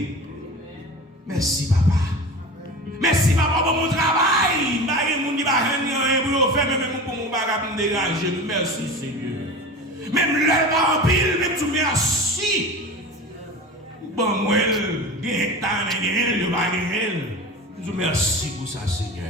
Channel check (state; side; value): normal; both; correlation 0.32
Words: Merci Papa. Merci Papa pour mon travail. Je ne vais pas faire même pour mon bagage pour me dégager. Merci Seigneur. Même le en pile, même tout merci. Bon, moi, je vous merci pour ça,